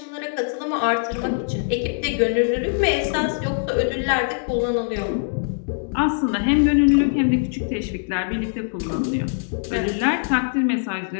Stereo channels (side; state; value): right; silent; digital silence